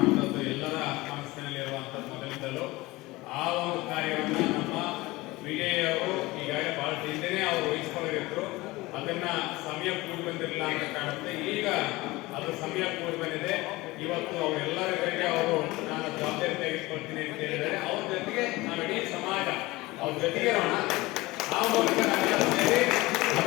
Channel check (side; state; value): right; quieter; 20.6 dB